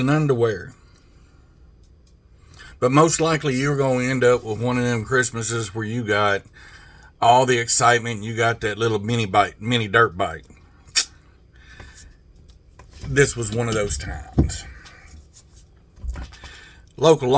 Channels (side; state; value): both; identical; correlation 1.00